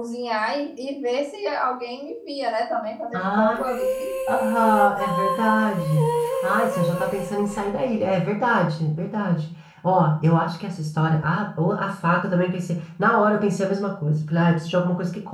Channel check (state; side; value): identical; both; correlation 1.00